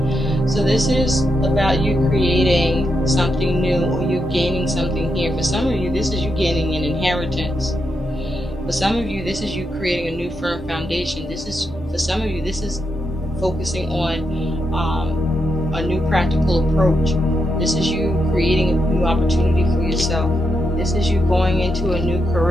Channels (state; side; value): normal; both; correlation 0.83